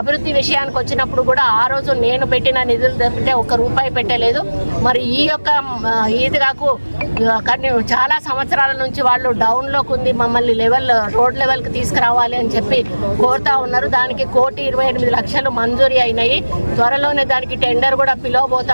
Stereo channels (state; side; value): inverted; both; correlation -1.00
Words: విషయానికి వచ్చినప్పుడు కూడా ఆ రోజు నేను పెట్టిన నిధులు దొరికితే ఒక్క రూపాయి పెట్టలేదు. మరి ఈ యొక్క ఈద్గాకు కానీ చాలా సంవత్సరాల నుంచి వాళ్ళు డౌన్లోకి ఉంది, మమ్మల్ని రోడ్ లెవెల్కి తీసుకురావాలి అని చెప్పి కోరుతా ఉన్నారు. దానికి 1,28,00,000 మంజూరీ అయినాయి. త్వరలోనే దానికి టెండర్ కూడా పిలవబోతా